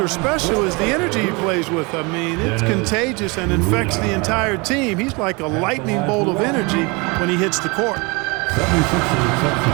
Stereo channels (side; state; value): left; quieter; 28.1 dB